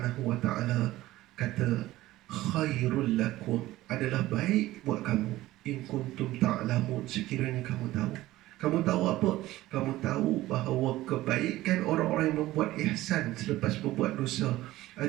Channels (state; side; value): quieter; left; 16.5 dB